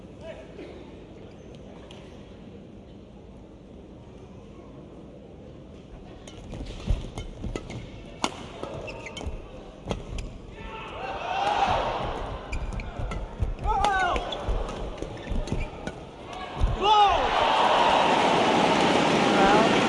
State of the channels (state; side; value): identical; both; correlation 1.00